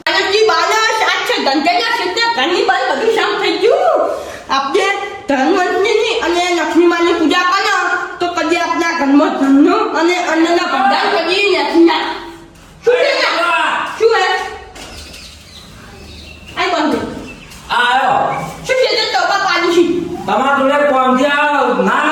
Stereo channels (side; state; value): both; identical; correlation 1.00